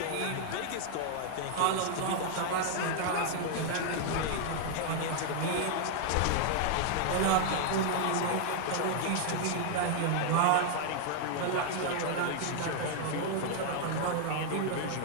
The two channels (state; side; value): different; both; correlation 0.00